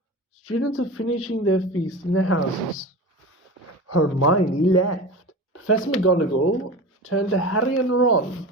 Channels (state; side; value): normal; both; correlation 0.30